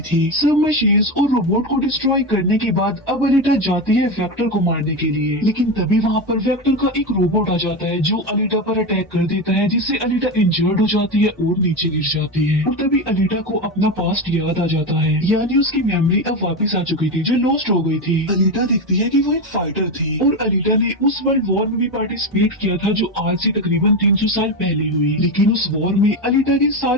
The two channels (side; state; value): both; normal; correlation 0.16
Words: थी। सब मशीन्स और रोबोट को डिस्ट्रॉय करने के बाद अब अलीटा जाती है वेक्टर को मारने के लिए, लेकिन तभी वहाँ पर वेक्टर का एक रोबोट आ जाता है जो अलीटा पर अटैक कर देता है, जिससे अलीटा इंजर्ड हो जाती है और नीचे गिर जाती है। और तभी अलीटा को अपना पास्ट याद आ जाता है, यानी उसकी मेमोरी अब वापस आ चुकी थी जो लॉस्ट हो गई थी। अलीटा देखती है कि वो एक फाइटर थी और अलीटा ने उस वर्ल्ड वॉर में भी पार्टिसिपेट किया था जो आज से तकरीबन 300 साल पहले हुई। लेकिन उस वॉर में अलीटा के